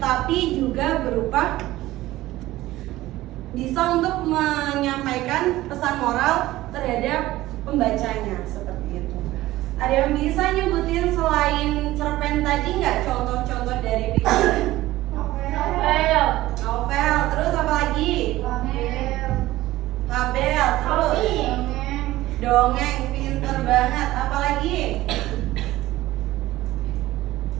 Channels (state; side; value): quieter; left; 16.6 dB